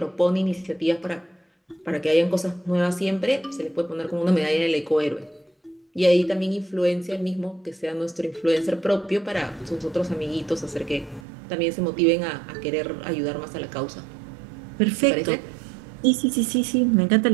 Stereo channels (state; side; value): drops out; left; at 11.2 s